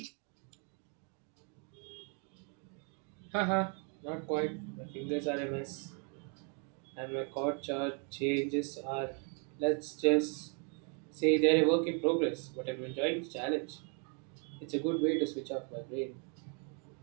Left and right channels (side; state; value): left; quieter; 39.3 dB